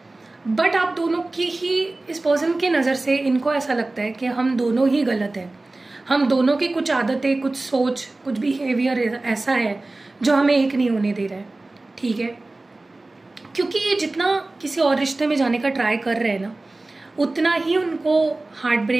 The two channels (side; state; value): left; quieter; 3.0 dB